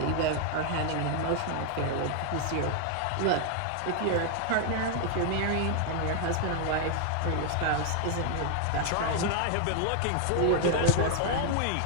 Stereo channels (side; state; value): both; different; correlation 0.00